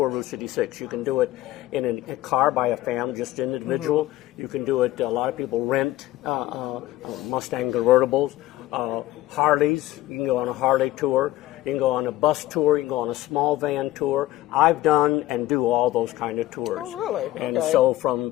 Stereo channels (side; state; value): right; quieter; 15.9 dB